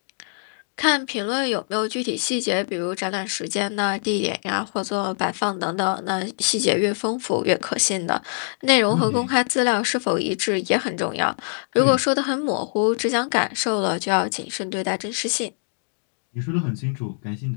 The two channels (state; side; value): silent; right; digital silence